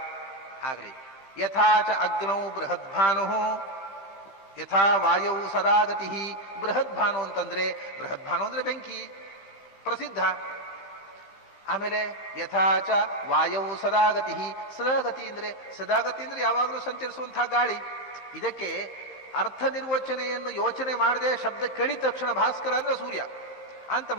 ಆಗಲಿ. ಯಥಾಚ ಅಗ್ನೌ ಬೃಹದ್ಭಾನು ಯಥಾ ವಾಯೌ ಸದಾಗತಿ. ಬೃಹದ್ಭಾನು ಅಂತಂದ್ರೆ ಬೃಹದ್ಭಾನು ಅಂದ್ರೆ ಬೆಂಕಿ, ಪ್ರಸಿದ್ಧ. ಆಮೇಲೆ ಯಥಾಚ ವಾಯೌ ಸದಾಗತಿ. ಸದಾಗತಿ ಅಂದ್ರೆ ಯಾವಾಗಲೂ ಸಂಚರಿಸುವಂತಹ ಗಾಳಿ. ಇದಕ್ಕೆ ಅರ್ಥ ನಿರ್ವಚನೆಯನ್ನು ಯೋಚನೆ ಮಾಡದೆ ಶಬ್ದ ಕೇಳಿದ ತಕ್ಷಣ ಭಾಸ್ಕರ ಅಂದ್ರೆ ಸೂರ್ಯ ಅಂತ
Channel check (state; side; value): late; right; 15 ms